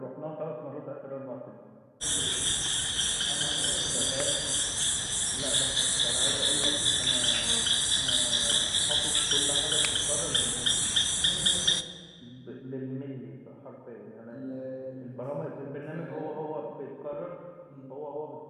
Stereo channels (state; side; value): identical; both; correlation 1.00